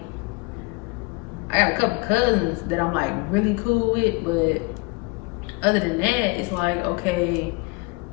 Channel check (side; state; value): right; quieter; 29.0 dB